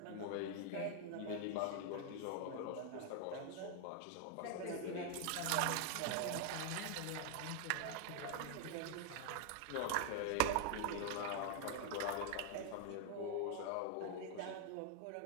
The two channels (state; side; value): different; both; correlation 0.00